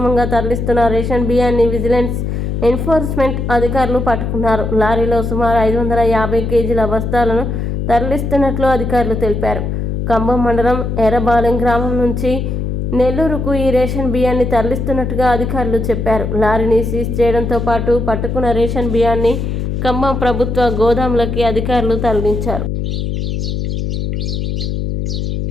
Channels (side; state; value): left; noise; hum, 2 dB below the sound